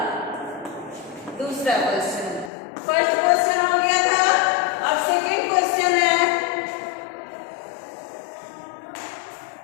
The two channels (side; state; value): right; drops out; at 2.5 s